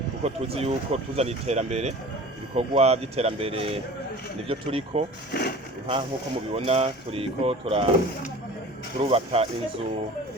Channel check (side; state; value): both; normal; correlation 0.41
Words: kuko tuzi yuko tuzana iterambere, ibikorwa by'iterambere nivyo turiko nk'uko mubibona turiko turubaka inzu